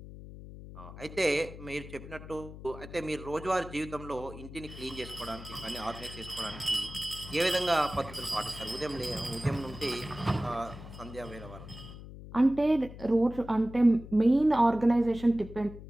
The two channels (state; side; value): noise; left; hum, 14 dB below the sound